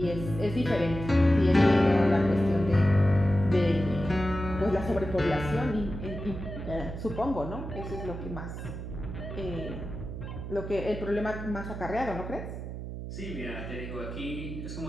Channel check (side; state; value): right; noise; hum, 8 dB below the sound